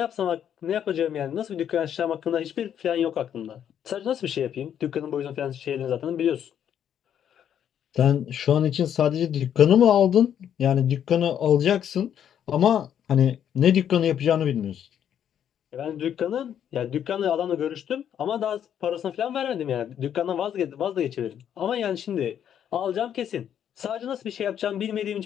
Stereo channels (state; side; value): quieter; right; 9.4 dB